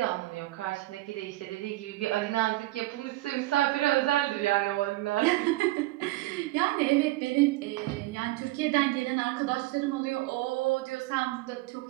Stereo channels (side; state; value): left; quieter; 18.7 dB